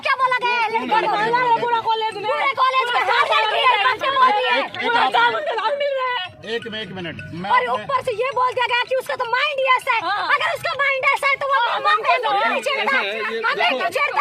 क्या बोला गया है। पूरा कॉलेज में एक मिनट और ऊपर से ये बोल दिया गया कि उसका तो माइंड ही ऐसा है। अगर उसका माइंड ऐसा है तो वो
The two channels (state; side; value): identical; both; correlation 1.00